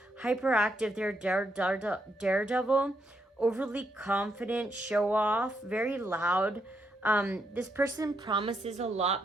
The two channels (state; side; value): normal; both; correlation 0.79